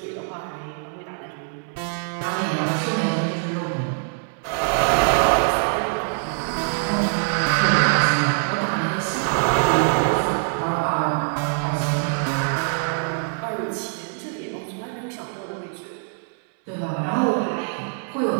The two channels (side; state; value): left; silent; 63 dB below the other